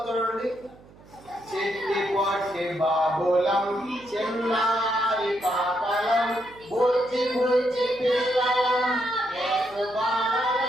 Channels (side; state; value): right; noise; hum, 24 dB below the sound